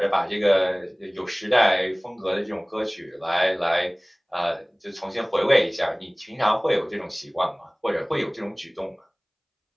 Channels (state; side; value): identical; both; correlation 1.00